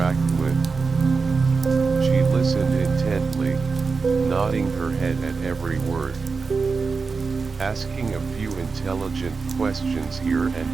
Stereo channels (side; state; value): left; quieter; 4.7 dB